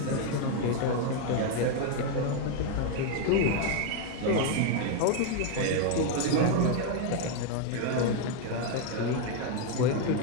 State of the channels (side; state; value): both; different; correlation 0.01